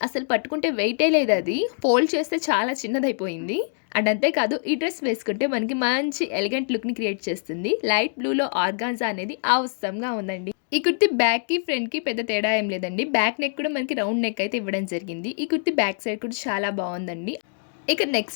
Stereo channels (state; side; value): silent; right; digital silence